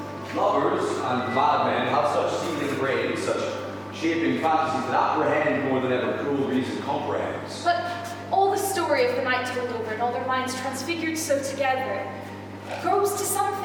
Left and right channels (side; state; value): both; identical; correlation 1.00